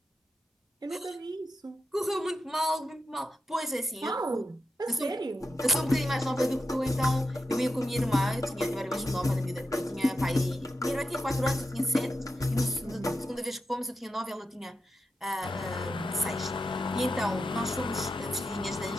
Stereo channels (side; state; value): both; normal; correlation 0.87